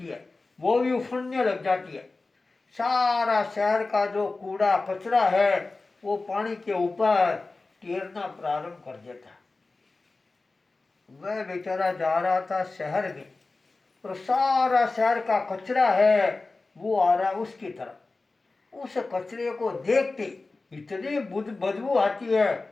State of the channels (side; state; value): right; quieter; 3.5 dB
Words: है वो भी उफड़ने लग जाती है। सारा शहर का जो कूड़ा कचरा है वो पानी के ऊपर तैरना प्रारंभ कर देता है। वह बेचारा जा रहा था शहर में और सारा शहर का कचरा है वो आ रहा उसकी तरफ। उस कचरे को देखते इतनी बदबू आती है,